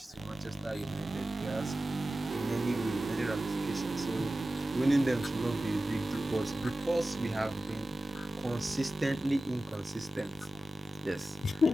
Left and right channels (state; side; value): normal; both; correlation 0.95